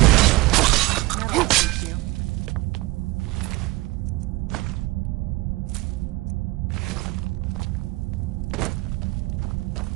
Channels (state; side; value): quieter; left; 21.2 dB